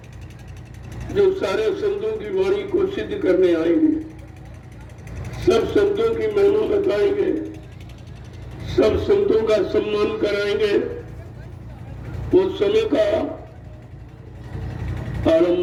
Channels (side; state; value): both; identical; correlation 1.00